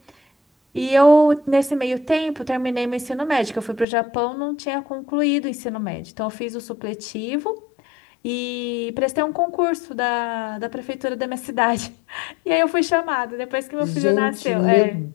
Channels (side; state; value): right; drops out; at 3.9 s